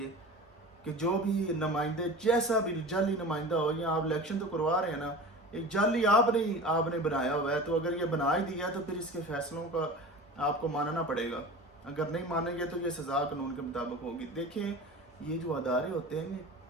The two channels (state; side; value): normal; both; correlation 0.34